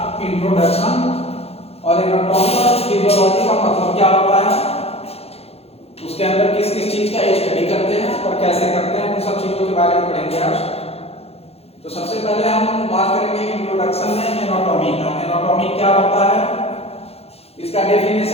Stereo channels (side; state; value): right; late; 0.29 ms